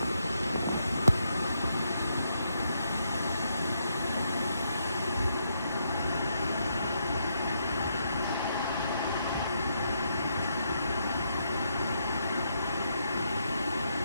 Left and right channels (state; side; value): inverted; both; correlation -0.78